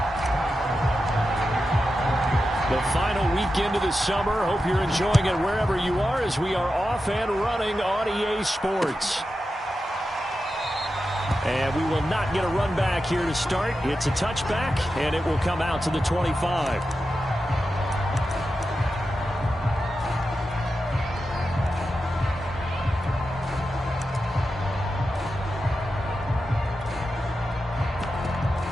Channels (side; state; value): both; normal; correlation 0.90